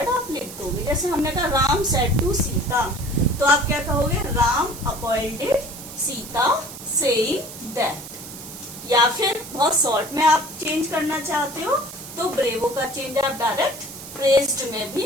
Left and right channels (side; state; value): right; noise; hiss, 13 dB below the sound